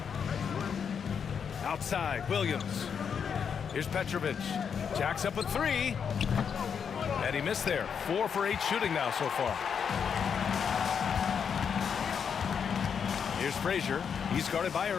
Outside, Williams. Here's Petrovic. Jacks up a 3. And he missed there. 4 for 8 shooting now so far. Here's Frazier. He's guarded by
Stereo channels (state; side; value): quieter; right; 7.0 dB